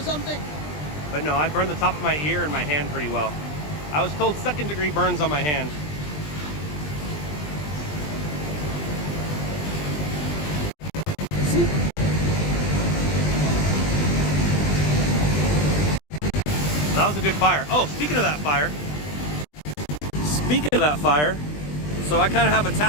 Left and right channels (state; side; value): late; right; 20 ms